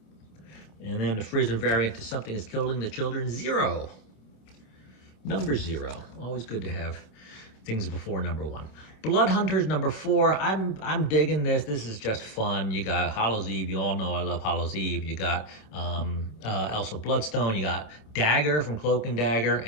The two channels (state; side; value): late; right; 27 ms